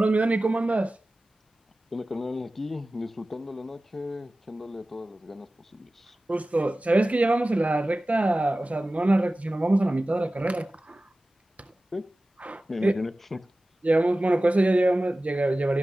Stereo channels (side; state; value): both; normal; correlation 0.96